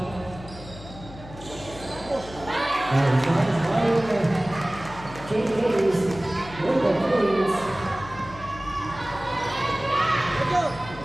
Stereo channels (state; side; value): noise; left; hum, 16 dB below the sound